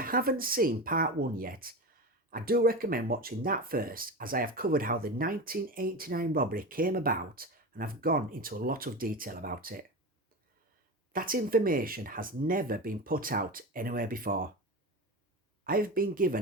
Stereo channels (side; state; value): both; normal; correlation 0.24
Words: seen part 1 yet, I do recommend watching that first, as I have covered how the 1989 robbery came about and I've gone into a lot of detail about it. That information has never been put out anywhere before. I have been